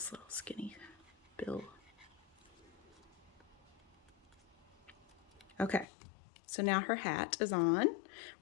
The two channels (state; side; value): drops out; right; at 5.9 s